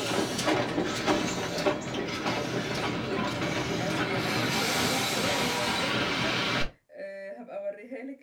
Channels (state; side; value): identical; both; correlation 1.00